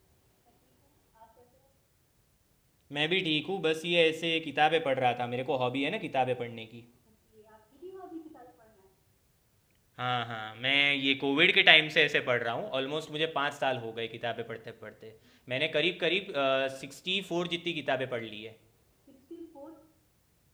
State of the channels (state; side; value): identical; both; correlation 1.00